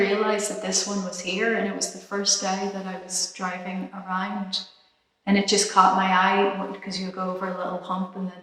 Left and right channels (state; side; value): identical; both; correlation 1.00